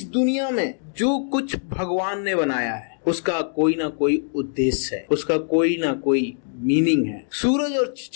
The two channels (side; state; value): right; silent; 64 dB below the other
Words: दुनिया में जो कुछ भगवान ने बनाया है उसका कोई ना कोई उद्देश्य है, उसका कोई ना कोई मीनिंग है। सूरज और